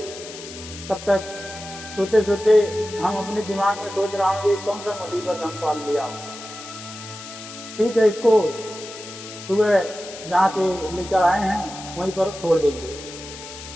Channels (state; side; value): noise; left; hiss, 13 dB below the sound